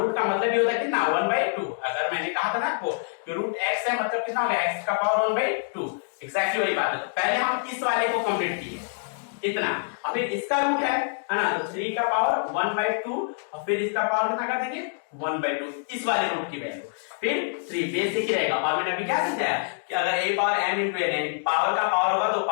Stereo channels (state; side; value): silent; right; digital silence